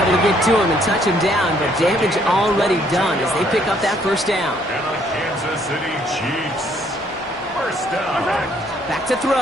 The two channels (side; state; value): both; normal; correlation 0.66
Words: to get to him and touch him down, but damage already done as they pick up that 1st down. And the Kansas City Chiefs. 1st down. Back to